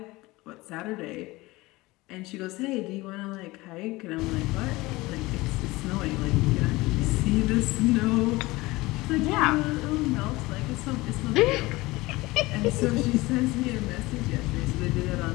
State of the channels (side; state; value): right; quieter; 20.9 dB